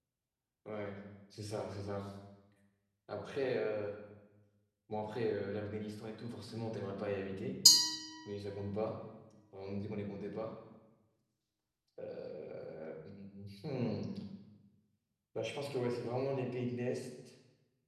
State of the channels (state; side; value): identical; both; correlation 1.00